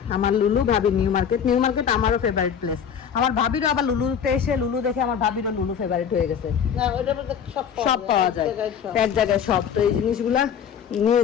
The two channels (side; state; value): right; quieter; 7.7 dB